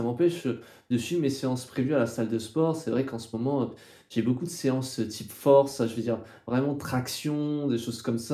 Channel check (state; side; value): identical; both; correlation 1.00